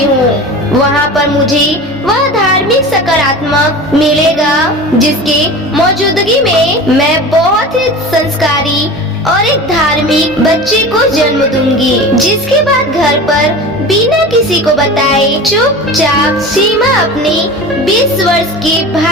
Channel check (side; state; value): both; normal; correlation 0.33